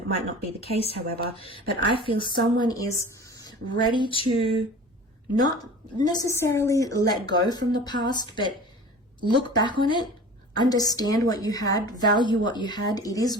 might not be the case, however, but I feel someone is ready to not necessarily let go from the past, but look back on it, understand what you had, value what you had. It is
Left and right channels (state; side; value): normal; both; correlation 0.40